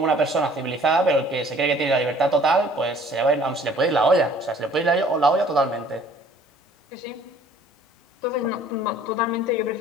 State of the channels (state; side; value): normal; both; correlation 0.54